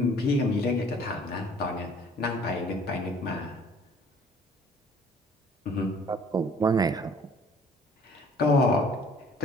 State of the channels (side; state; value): both; normal; correlation 0.54